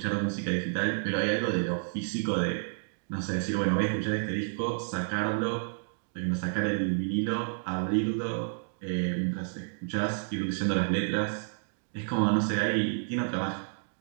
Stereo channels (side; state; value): left; silent; digital silence